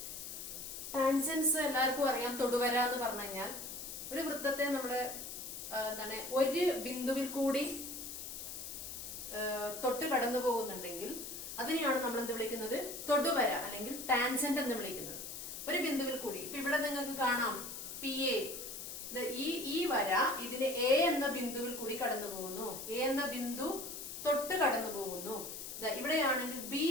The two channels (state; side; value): noise; left; hiss, 8 dB below the sound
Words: ടാൻജൻസ് എല്ലാവർക്കും അറിയാം. തൊടുവര എന്ന് പറഞ്ഞു കഴിഞ്ഞാൽ ഒരു വൃത്തത്തെ നമ്മുടെ ഒരു ബിന്ദുവിൽ കൂടി തൊട്ട് കടന്നു പോകുന്നുണ്ടെങ്കിൽ അതിനെയാണ് നമ്മൾ എന്ത് വിളിക്കുന്നത്? തൊടുവര അല്ലെങ്കിൽ ടാൻജന്റ് എന്ന് വിളിക്കുന്നത്. ഒരു ബിന്ദുവിൽ കൂടി ഇപ്പൊ ഇവിടെ നിങ്ങൾക്ക് കാണാം PA, ഈ വര ഇതിന് A എന്ന ബിന്ദുവിൽ കൂടി കടന്നു പോകുന്നു. A എന്ന ബിന്ദു തൊട്ട് കടന്നു പോകുന്നു. ഇവിടെയാണെങ്കിൽ B